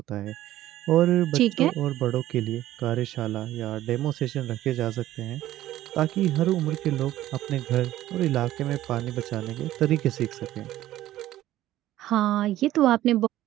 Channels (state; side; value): quieter; left; 14.3 dB